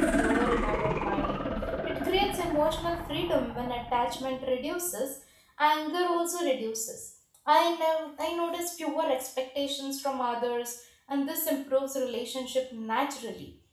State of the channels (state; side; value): identical; both; correlation 1.00